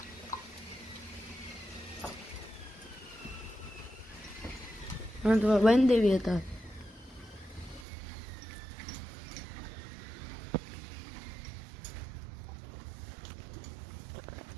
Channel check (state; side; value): drops out; left; at 7.9 s